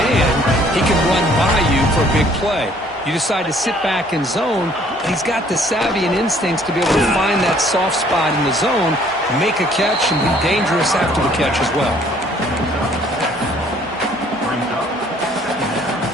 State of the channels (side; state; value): both; normal; correlation 0.59